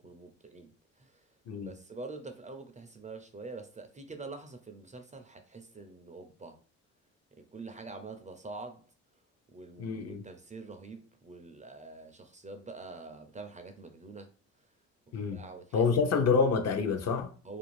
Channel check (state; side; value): quieter; right; 4.2 dB